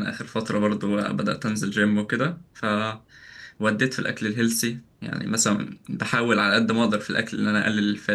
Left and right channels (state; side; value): identical; both; correlation 1.00